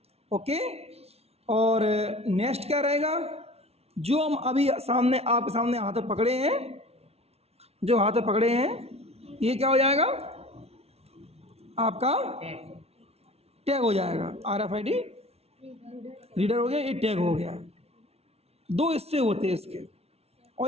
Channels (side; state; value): left; late; 0.30 ms